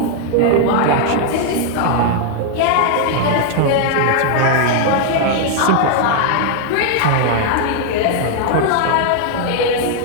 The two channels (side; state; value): both; different; correlation 0.00